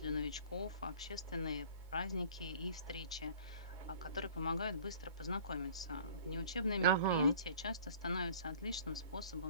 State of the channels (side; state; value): both; inverted; correlation -0.48